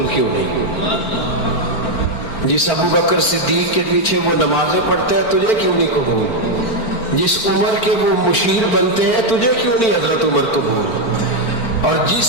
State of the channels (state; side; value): late; right; 4.4 ms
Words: کیوں نہیں. جس ابو بکر صدیق کے پیچھے وہ نمازیں پڑھتے ہیں تجھے کیوں نہیں قبول. جس عمر کے وہ مشیر بنتے ہیں تجھے کیوں نہیں حضرت عمر قبول. اور جس